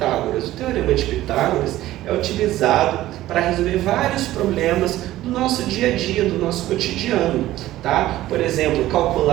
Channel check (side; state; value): left; quieter; 15.2 dB